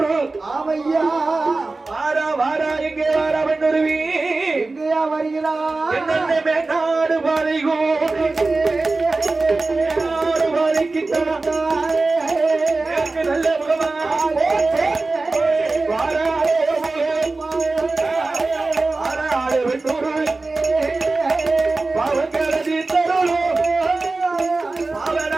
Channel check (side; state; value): left; quieter; 3.5 dB